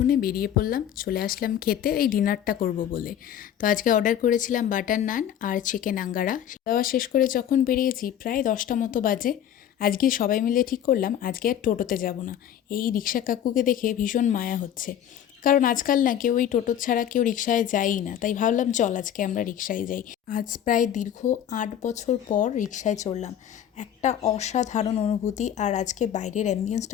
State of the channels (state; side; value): quieter; right; 10.2 dB